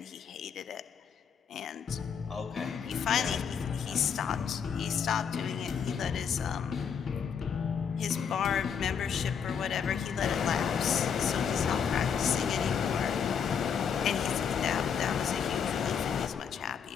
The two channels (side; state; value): right; quieter; 7.1 dB